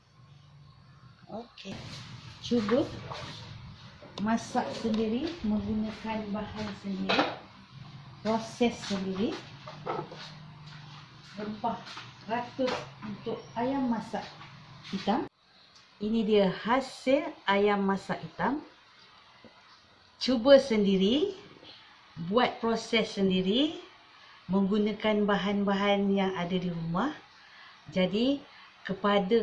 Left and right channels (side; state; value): both; identical; correlation 1.00